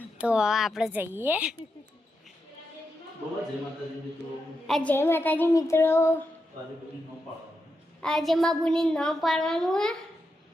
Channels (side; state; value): both; normal; correlation 0.86